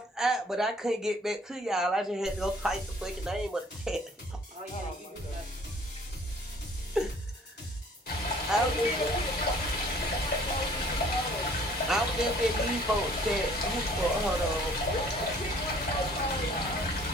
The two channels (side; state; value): both; normal; correlation 0.55